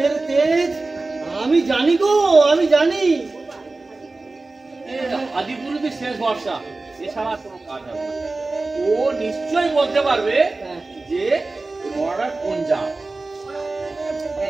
তেজ আমি জানি গো, আমি জানি। আদিপুরুষের শেষ ভরসা, এছাড়া কোনো কাজ হবে না। ও নিশ্চয়ই বলতে পারবে যে মরার কোন জাত।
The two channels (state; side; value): quieter; left; 3.4 dB